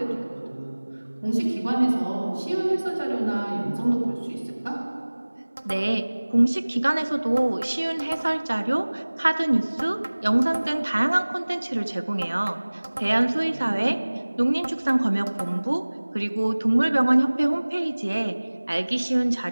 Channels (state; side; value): inverted; both; correlation -1.00